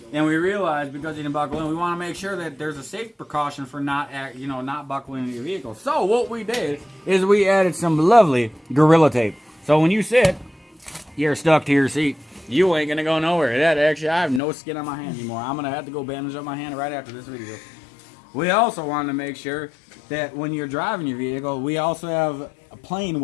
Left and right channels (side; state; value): right; drops out; at 14.4 s